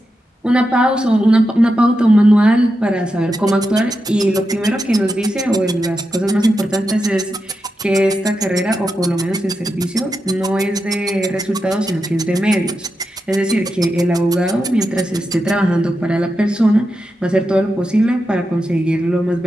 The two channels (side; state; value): both; normal; correlation 0.88